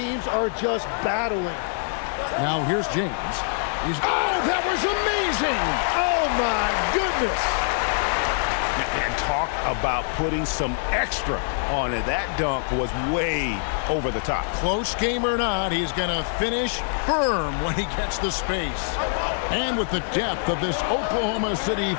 are just battling. Now here's James. Oh, that was amazing! Oh, my goodness. And talk about putting some extra on it. That dunk was way over the top. Close game or not, he's going to finish firm when he gets the space. And with the depth of this Oklahoma City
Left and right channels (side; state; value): right; silent; 62 dB below the other